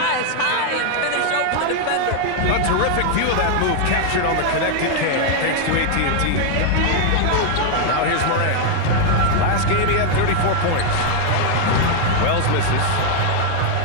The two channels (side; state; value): both; different; correlation 0.00